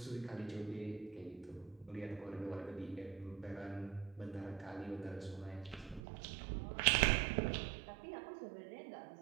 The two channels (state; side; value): drops out; left; at 6.0 s